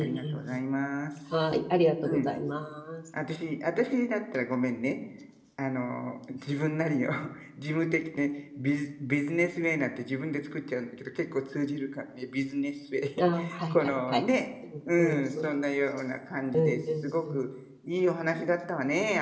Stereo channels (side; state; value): both; identical; correlation 1.00